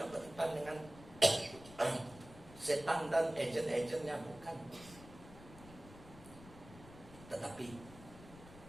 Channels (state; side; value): noise; left; rumble, 18 dB below the sound